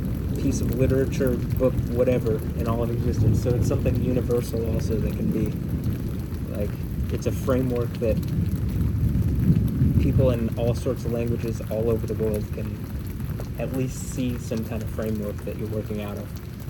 piece of literature, book, whatever, in all of existence. So it's something universal also that can be, like, it's a framework that people in all sorts of languages all over the world can at least see some kind of framework that you're working out of.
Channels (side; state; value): both; identical; correlation 1.00